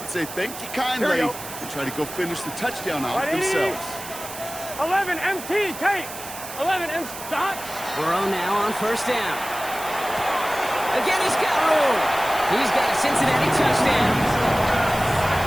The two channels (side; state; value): right; noise; hiss, 11 dB below the sound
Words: say thank you kindly and try to go finish the touchdown out themselves. 11 MT, Kate. 11 MT, stop. Burrow now on first down. Again, he's got room. He's got a Cincinnati touchdown.